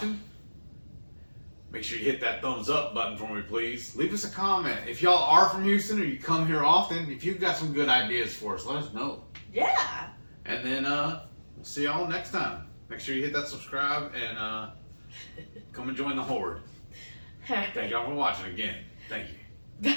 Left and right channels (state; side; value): inverted; both; correlation -1.00